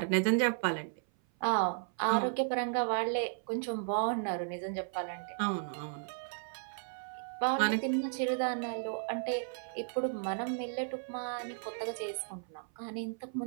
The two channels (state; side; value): silent; left; 55 dB below the other